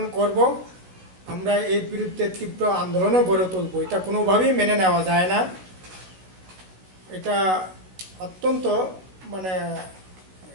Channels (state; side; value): late; left; 16 ms